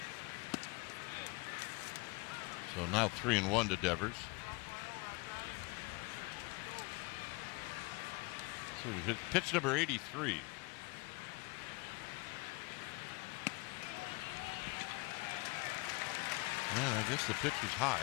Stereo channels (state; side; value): quieter; right; 25.1 dB